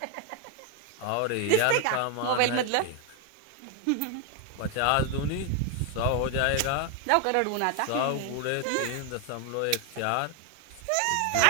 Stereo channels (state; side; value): different; both; correlation 0.01